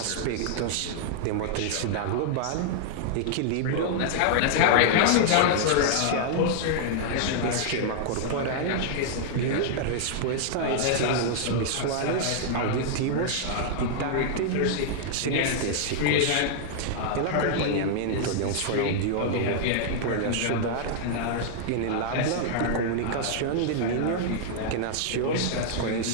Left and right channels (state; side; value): different; both; correlation -0.01